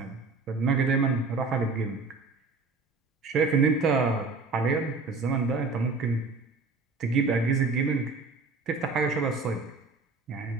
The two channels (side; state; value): left; quieter; 4.1 dB